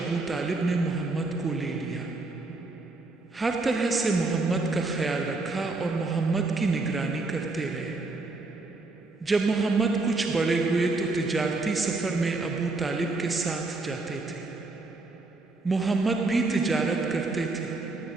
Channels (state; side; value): quieter; left; 3.4 dB